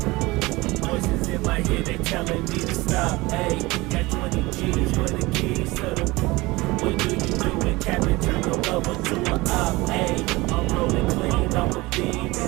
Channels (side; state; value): left; quieter; 21.6 dB